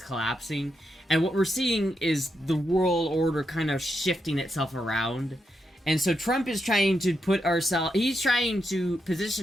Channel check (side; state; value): both; normal; correlation 0.83